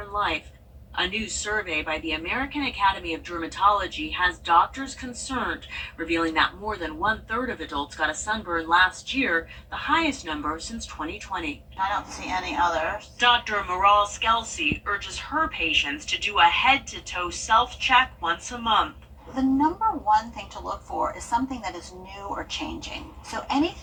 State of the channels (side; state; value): both; identical; correlation 1.00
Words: life. A new survey by the American Academy of Dermatology has doctors concerned, revealing that more than 1/3 of adults got a sunburn last year, the highest number since 2020. I don't see any others. Dr. Maral Skelsey urges her patients to do a head-to-toe self-check once a month. The number one thing to look for is something that is new or changing. So